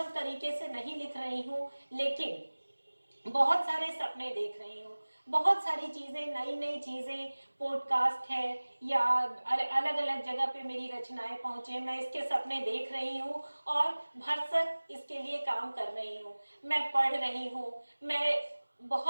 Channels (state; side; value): inverted; both; correlation -1.00